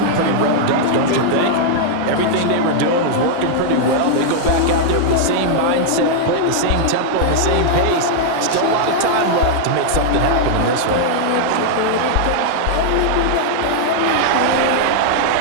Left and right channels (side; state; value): both; different; correlation -0.01